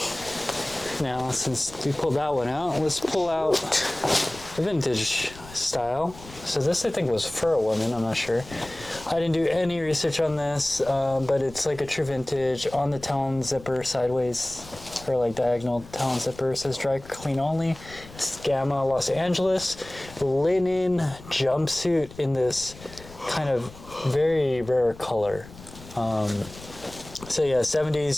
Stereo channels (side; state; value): left; noise; rumble, 18 dB below the sound